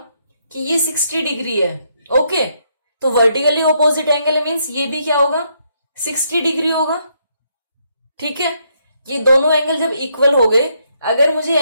कि ये 60 डिग्री है, ओके, तो वर्टिकली ऑपोजिट एंगल मीन्स ये भी क्या होगा, 60 डिग्री होगा, ठीक है। ये दोनों एंगल जब इक्वल हो गए, अगर मुझे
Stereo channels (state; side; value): inverted; both; correlation -0.74